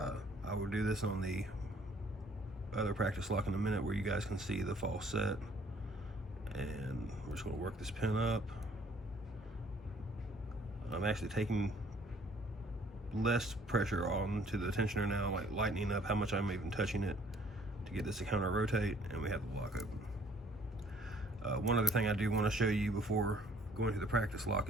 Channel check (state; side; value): normal; both; correlation 0.59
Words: I will do this on the other practice lock in a minute where you guys can see the false set. And we're just going to work this pin up. I'm actually taking less pressure on to the tensioner now, like lightening up how much I'm even touching it to get this to counter rotate, and we have the lock open. One other thing I do want to show you before going to the practice lock